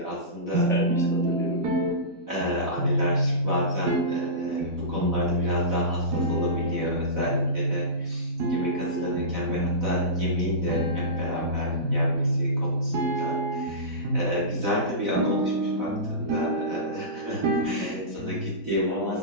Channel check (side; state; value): left; late; 4.0 ms